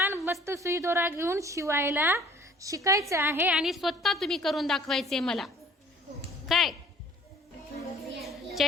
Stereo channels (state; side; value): normal; both; correlation 0.53